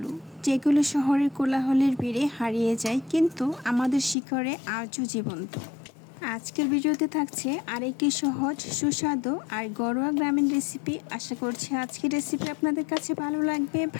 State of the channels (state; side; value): drops out; right; at 4.2 s